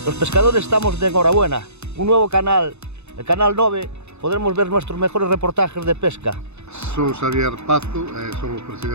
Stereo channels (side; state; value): left; late; 0.81 ms